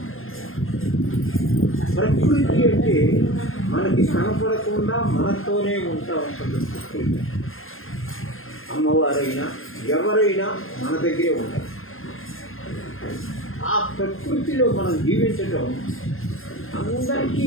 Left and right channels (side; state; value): right; late; 0.60 ms